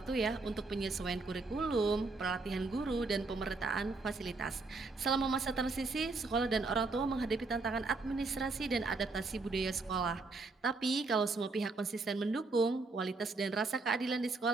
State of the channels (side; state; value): left; quieter; 3.7 dB